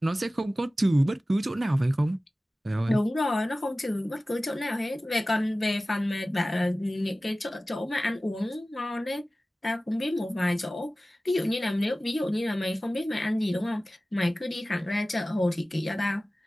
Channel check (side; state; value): both; normal; correlation 0.97